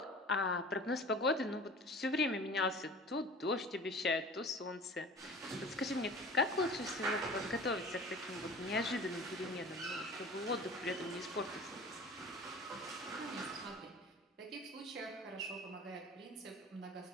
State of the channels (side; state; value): both; normal; correlation 0.41